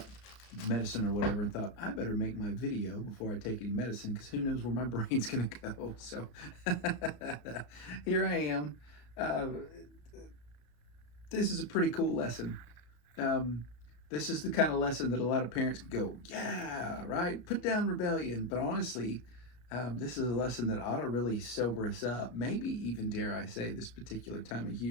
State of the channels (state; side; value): late; right; 33 ms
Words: medicine or whatever, and thought I better make my video before I take any medicine because who knows where my brain's gonna go. So here I am. Uh, this is a pretty cool lesson. Um, this is the kind of lesson that a lot of parents go, yeah, right, put down rebellion. But honestly, this is a lesson that ought to really sober us up. Maybe even, dare I say, this particular time of